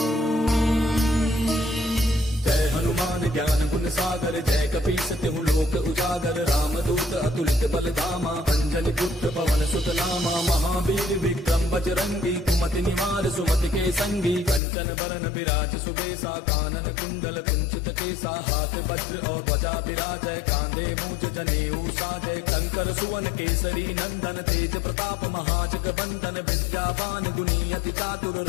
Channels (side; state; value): right; drops out; at 14.6 s